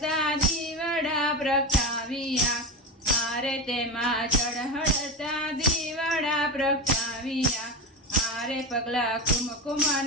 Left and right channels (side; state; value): both; normal; correlation 0.19